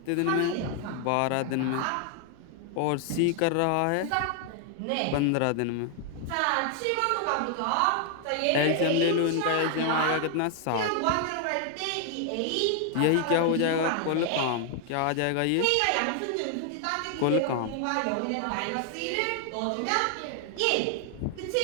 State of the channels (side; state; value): both; different; correlation 0.00